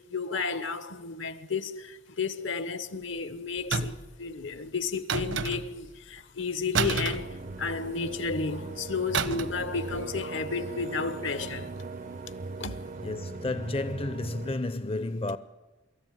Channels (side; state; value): both; normal; correlation 0.18